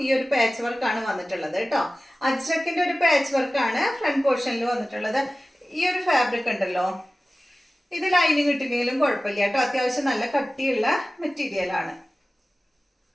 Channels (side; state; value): both; normal; correlation 0.97